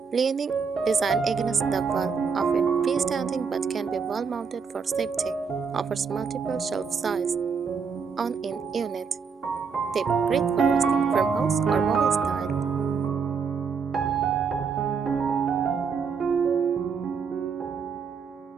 leaning design against the wall, often freestanding but can be wall mounted for safety. Offers multiple shelf size on in unit. Tip: great for rustic farmhouse or boho style.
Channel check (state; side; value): quieter; left; 5.8 dB